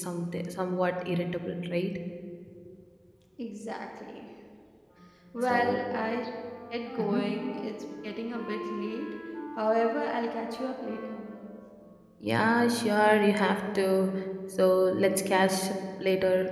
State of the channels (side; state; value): both; identical; correlation 1.00